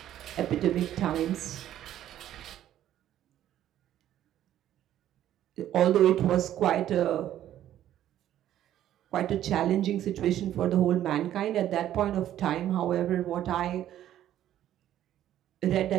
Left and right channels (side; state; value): left; quieter; 11.9 dB